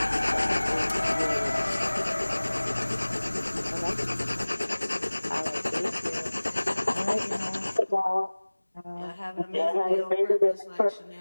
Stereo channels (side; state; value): both; inverted; correlation -1.00